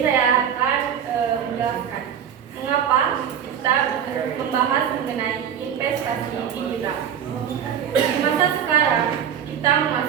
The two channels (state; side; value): quieter; left; 8.8 dB